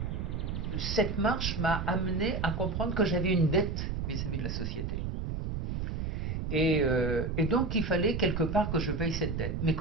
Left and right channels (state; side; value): noise; right; rumble, 3 dB below the sound